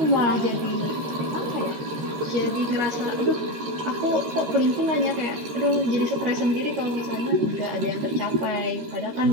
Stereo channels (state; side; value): late; left; 13 ms